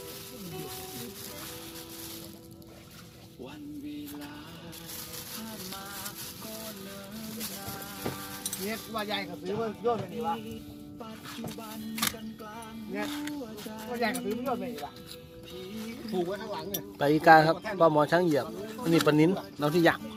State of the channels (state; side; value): identical; both; correlation 1.00